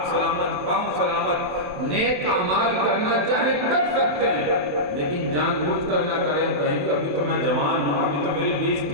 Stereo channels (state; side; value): late; left; 28 ms